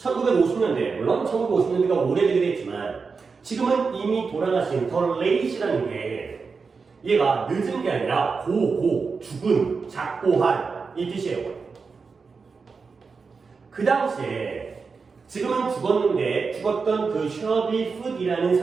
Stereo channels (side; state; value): left; quieter; 4.9 dB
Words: 물론 1950년대가 오래되긴 했지만 지금은 이미 돌아가신 더 레이시라는 게 얘가 늦은 게 아니라 죽은, 작고 한 이 뜻이에요. 그 당시에 지금은 죽었는데 죽었던 그 셔비 풋이라는